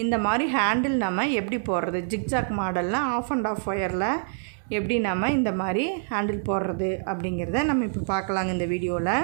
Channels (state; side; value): silent; left; digital silence